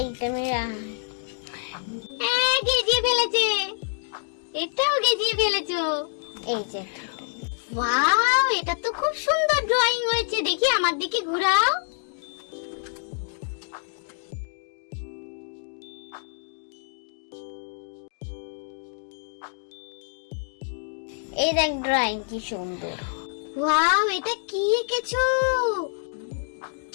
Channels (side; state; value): right; silent; digital silence